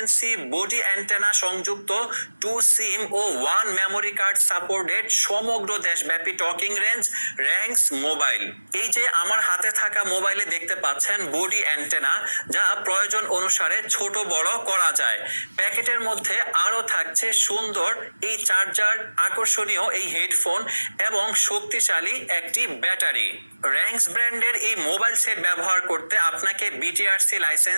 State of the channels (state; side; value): inverted; both; correlation -1.00